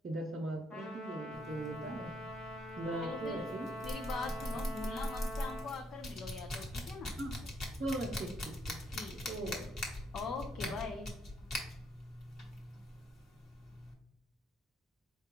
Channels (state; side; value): normal; both; correlation 0.71